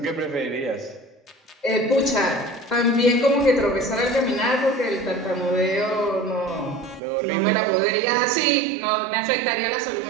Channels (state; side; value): drops out; left; at 7.0 s